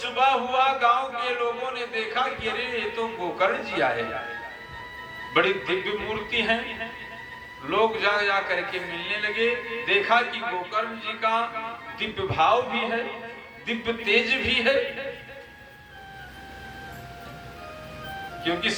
हुआ, गांव के लोगों ने देखा कि अरे ये तो गोकर्ण जी आए, बड़ी दिव्य मूर्ति है। लोग जा करके मिलने लगे। देखा कि गोकर्ण जी का दिव्य भाव भी है, दिव्य तेज भी है, क्योंकि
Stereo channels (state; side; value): identical; both; correlation 1.00